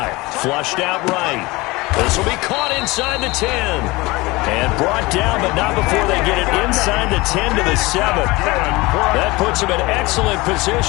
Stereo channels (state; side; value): quieter; right; 22.2 dB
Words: Flushed out right. This will be caught inside the 10. And brought down, but not before they get it inside the 10 to the 7. That puts them in excellent